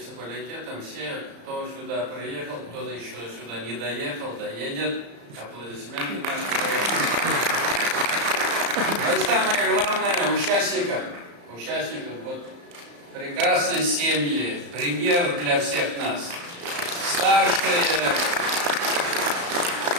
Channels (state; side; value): late; left; 35 ms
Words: Все, кто сюда приехал, кто еще сюда не доехал, доедет. Аплодисменты нашим районам. Ну и самое главное, участникам. Вот прекрасные семьи, пример для всех нас. Старшие,